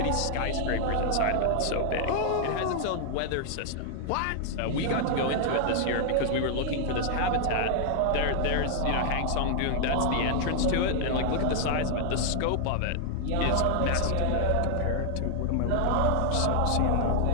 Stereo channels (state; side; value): different; both; correlation 0.00